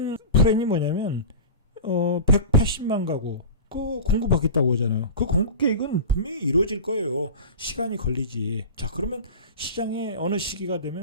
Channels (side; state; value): both; inverted; correlation -0.31